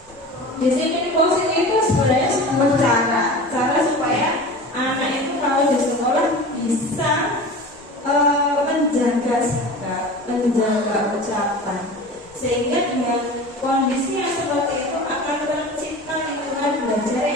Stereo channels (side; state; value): both; normal; correlation 0.35